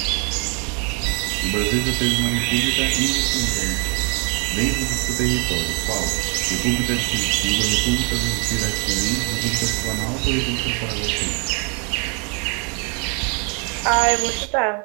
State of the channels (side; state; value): left; quieter; 34.9 dB